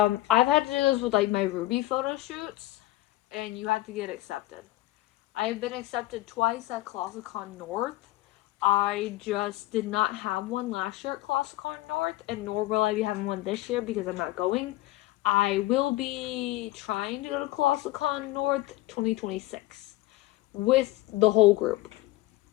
had to do this with like my Ruby photo shoots, and you have to get accepted. I've been accepted twice at ColossalCon North. I just did not have one last year at ColossalCon North, and nor will I be having one this year because I'm not going. I will be trying to go to ColossalCon North 2026 with the whole group.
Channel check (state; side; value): quieter; right; 17.5 dB